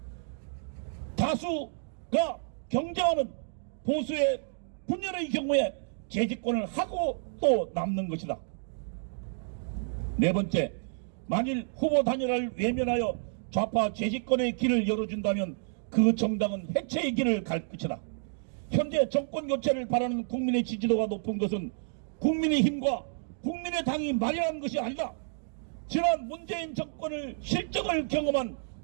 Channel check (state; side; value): silent; left; digital silence